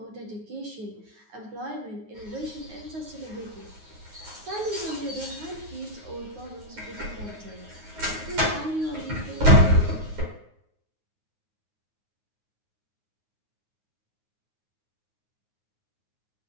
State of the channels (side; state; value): left; late; 9.5 ms